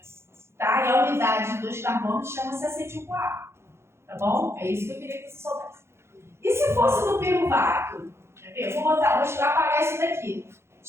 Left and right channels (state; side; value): late; left; 0.13 ms